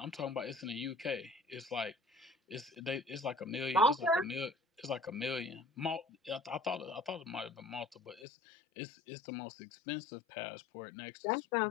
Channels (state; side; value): drops out; right; at 8.2 s